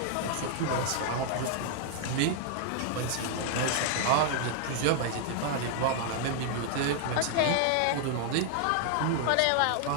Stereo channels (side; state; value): both; different; correlation 0.00